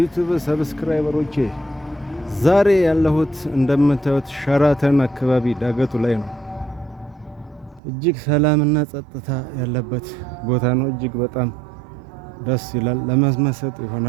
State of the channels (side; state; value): left; drops out; at 7.8 s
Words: ሰብስክራይበሮቼ፣ ዛሬ ያለሁት እንደምታዩት ሸራተን አካባቢ ዳገቱ ላይ ነው። እጅግ ሰላምና ጸጥታ ያለበት ቦታ ነው። እጅግ በጣም ደስ ይላል። ለመመሰጥ